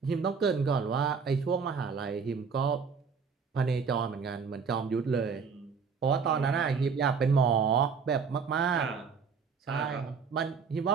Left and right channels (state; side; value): quieter; left; 5.7 dB